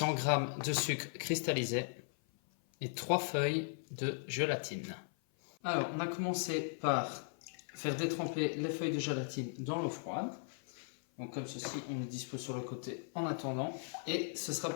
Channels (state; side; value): silent; right; 53 dB below the other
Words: g de sucre cristallisé et 3 feuilles de gélatine. Alors, on a commencé par faire détremper les feuilles de gélatine dans l'eau froide. Donc comme ceci, on les dispose sur le côté en attendant. Et ce sera